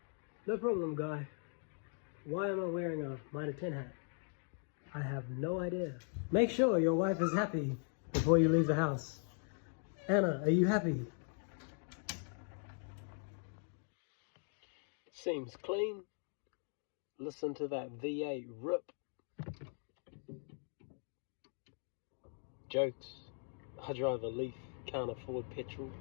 No problem, Guy. Why am I wearing a Mitre 10 hat? I have no idea. Make sure your wife is happy before you leave the house. Anna, are you happy? Seems clean. Listen to that V8 rip. Jokes. I drive a Leaf, can't afford petrol.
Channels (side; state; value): right; silent; 51 dB below the other